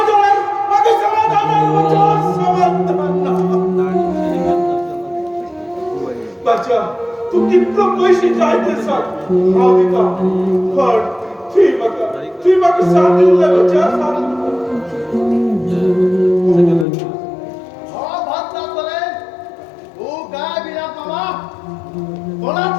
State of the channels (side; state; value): right; drops out; at 16.9 s